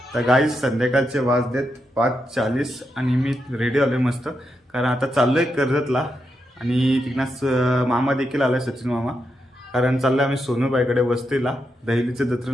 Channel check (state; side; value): normal; both; correlation 0.84